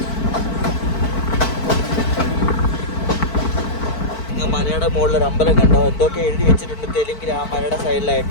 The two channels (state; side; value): late; right; 4.5 ms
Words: മലയുടെ മുകളിലൊരു അമ്പലം കണ്ടോ? എന്തൊക്കെ എഴുതി വെച്ചിട്ടുണ്ട് തെലുങ്കിൽ ആ മലയുടെ